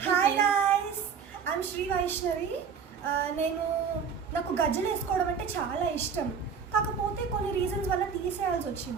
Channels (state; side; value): quieter; left; 6.4 dB